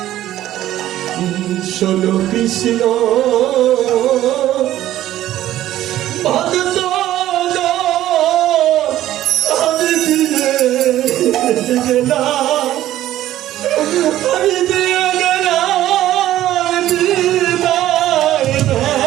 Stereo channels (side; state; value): left; quieter; 13.5 dB